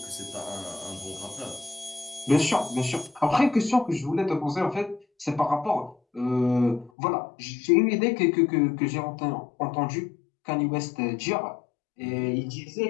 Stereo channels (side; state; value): right; drops out; at 6.9 s